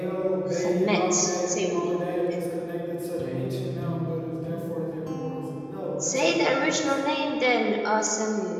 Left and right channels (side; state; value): both; identical; correlation 1.00